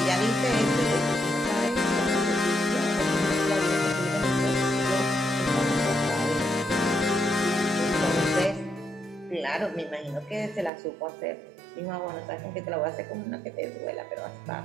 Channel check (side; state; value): left; drops out; at 10.7 s